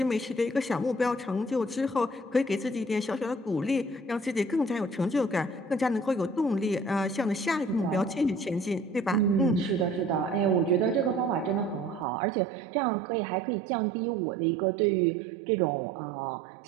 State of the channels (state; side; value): drops out; left; at 12.1 s